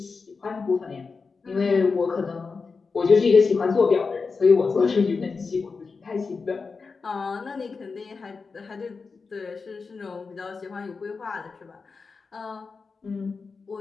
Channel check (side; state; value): right; quieter; 4.7 dB